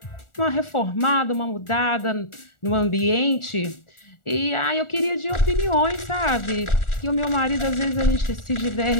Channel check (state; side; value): late; right; 1.4 ms